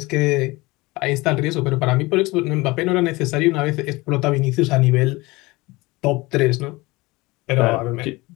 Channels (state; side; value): quieter; right; 22.2 dB